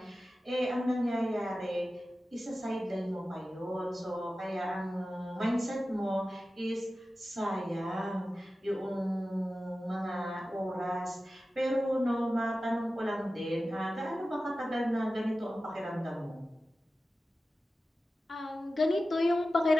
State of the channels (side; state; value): both; normal; correlation 0.94